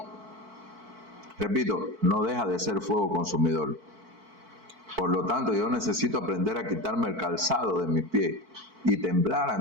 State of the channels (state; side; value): late; left; 4.5 ms